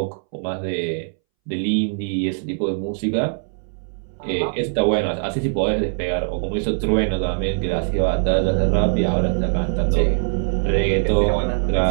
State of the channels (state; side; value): silent; left; 64 dB below the other